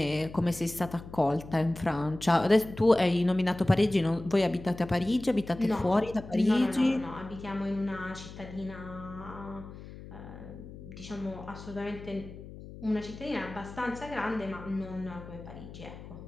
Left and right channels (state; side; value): noise; left; hum, 14 dB below the sound